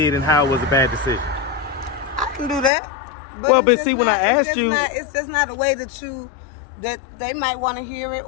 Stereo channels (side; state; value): right; drops out; at 2.7 s